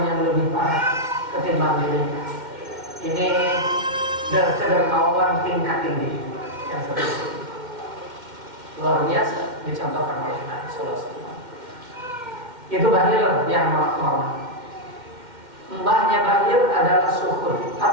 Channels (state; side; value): late; left; 2.1 ms